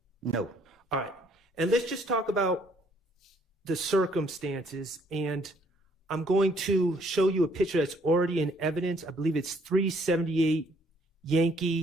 No. All right, and let's just talk about the circumstances, and I'm going to show you a picture that's already in evidence. I believe it's 378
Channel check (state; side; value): normal; both; correlation 0.64